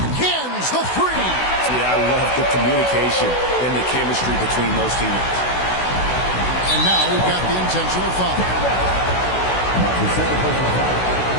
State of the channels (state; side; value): late; right; 16 ms